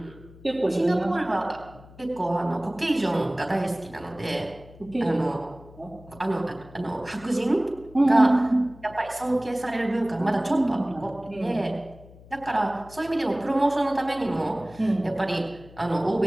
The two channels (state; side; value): noise; left; hum, 21 dB below the sound